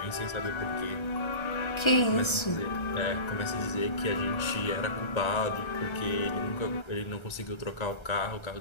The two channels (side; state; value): right; late; 1.3 ms